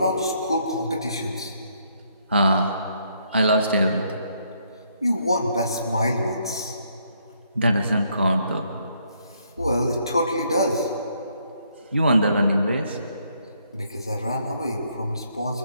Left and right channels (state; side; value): inverted; both; correlation -0.71